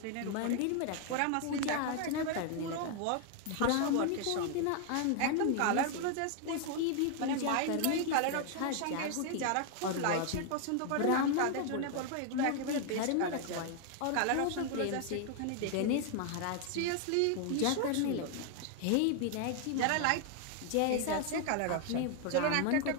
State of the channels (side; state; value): both; different; correlation 0.00